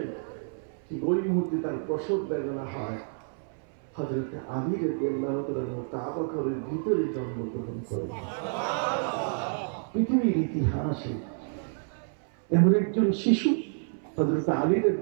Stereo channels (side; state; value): left; silent; 59 dB below the other